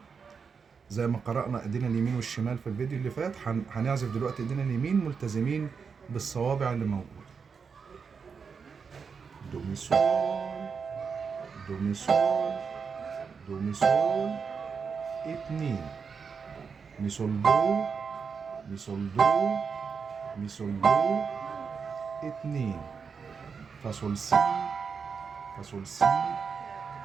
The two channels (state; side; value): quieter; left; 5.8 dB